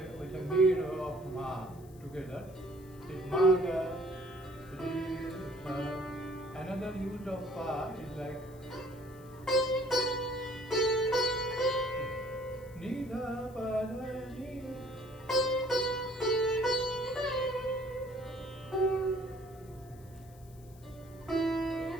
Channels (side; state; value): left; noise; hiss, 26 dB below the sound